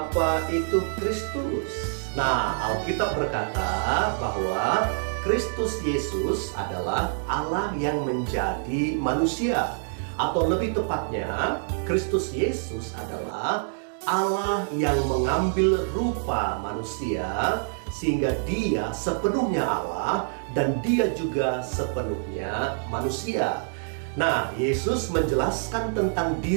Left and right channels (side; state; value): left; silent; 61 dB below the other